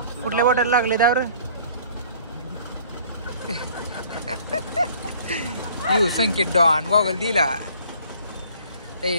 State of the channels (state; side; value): inverted; both; correlation -0.54